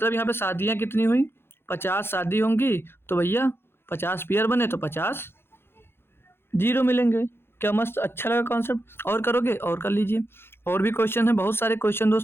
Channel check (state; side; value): late; right; 0.11 ms